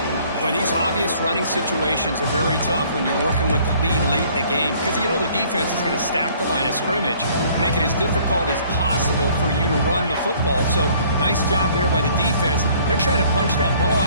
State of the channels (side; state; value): both; inverted; correlation -0.57